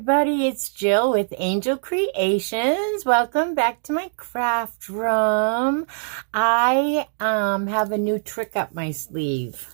it's Jill with Angel Creations. Welcome back to my craft room. I have a new trick up my sleeve.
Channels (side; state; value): left; silent; digital silence